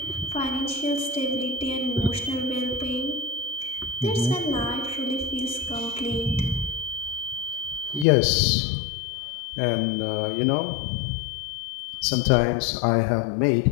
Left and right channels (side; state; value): right; drops out; at 8.1 s